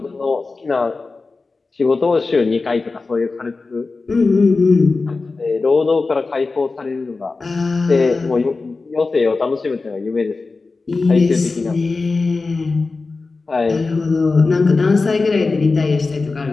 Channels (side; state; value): right; quieter; 3.9 dB